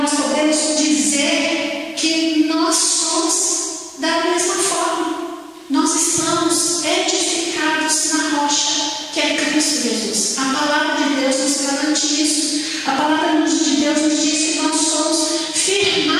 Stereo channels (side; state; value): both; identical; correlation 1.00